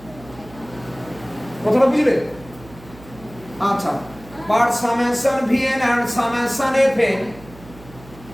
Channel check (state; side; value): noise; right; hum, 20 dB below the sound